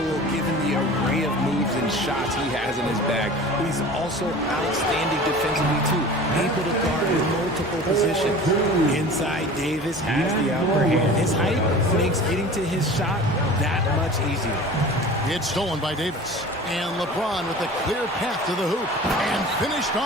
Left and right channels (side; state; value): both; normal; correlation 0.39